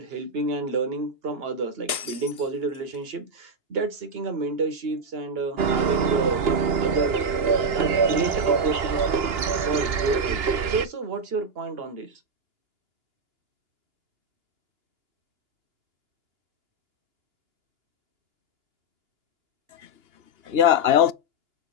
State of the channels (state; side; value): late; left; 2.9 ms